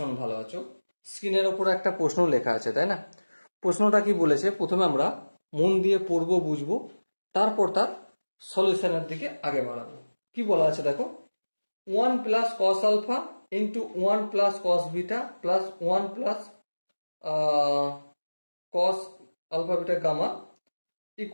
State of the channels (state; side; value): inverted; both; correlation -1.00